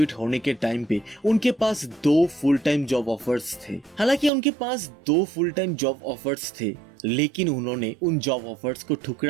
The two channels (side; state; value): left; drops out; at 4.3 s